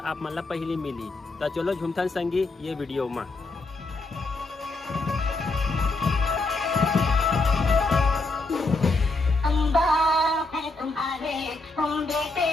आप मन ला पहली मिली। तो चलो झुमथन संगी ये वीडियो में। तुम बेटे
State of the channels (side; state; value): right; quieter; 3.2 dB